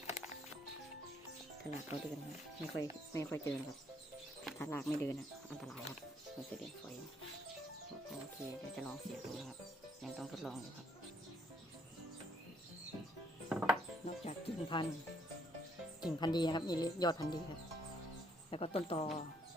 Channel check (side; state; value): both; normal; correlation 0.68